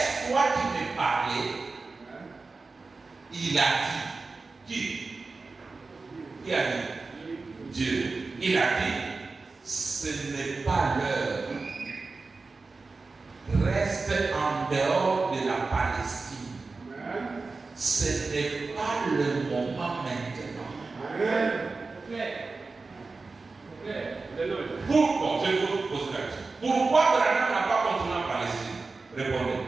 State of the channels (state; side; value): quieter; left; 3.9 dB